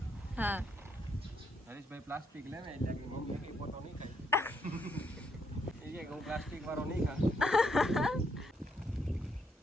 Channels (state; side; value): normal; both; correlation 0.75